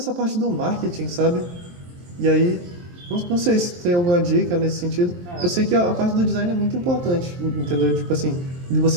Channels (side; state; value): left; late; 23 ms